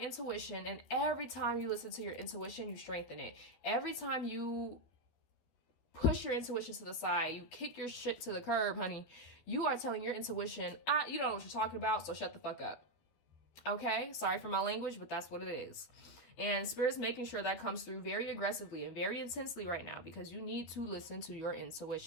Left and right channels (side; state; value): right; late; 12 ms